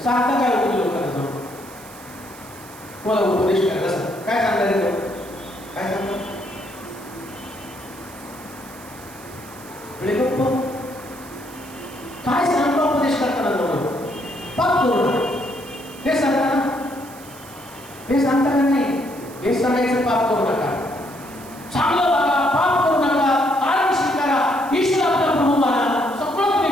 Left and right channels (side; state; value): right; noise; hiss, 19 dB below the sound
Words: सांगता काय होतं लोकांना जाऊन, तुम्हाला उपदेश करायला सांग, काय सांगता रे जाऊन, काय सांगता? काय सांगता उपदेश करताना जाऊन? पाप करू नका हे सांगता ना, हे सांगता का नाही? हे सांगायचं, पाप करू नका, चांगलं वागा, पाप करू नका, कारण स्वीकारा, ईश्वर आपला प्रभू माना, सगळं